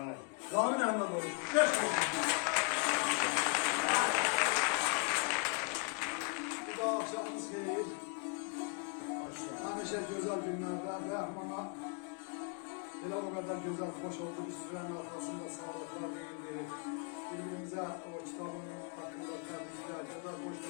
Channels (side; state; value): right; quieter; 36.0 dB